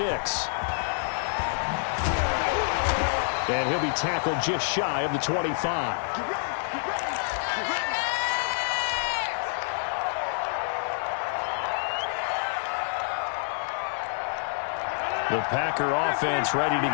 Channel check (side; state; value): right; silent; 60 dB below the other